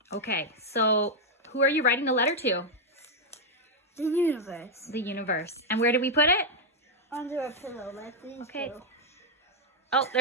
Okay, so who are you writing the letter to? The universe. The universe. And where did we put it? Under a pillow, like these Okay. two. Oh,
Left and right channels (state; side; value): normal; both; correlation -0.01